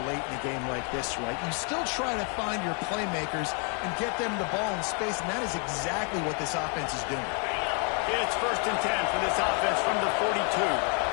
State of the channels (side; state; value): right; quieter; 38.0 dB